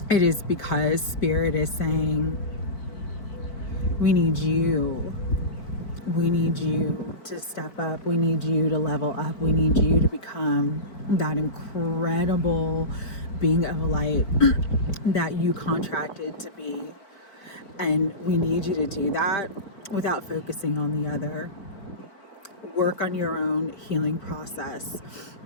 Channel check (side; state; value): right; late; 4.7 ms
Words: It is because Spirit is saying, we need you to step up. We need you to level up. We need you to become that incredible being of light that you contracted to be. And we need you to do that without focusing on the other. Work on your own healing process.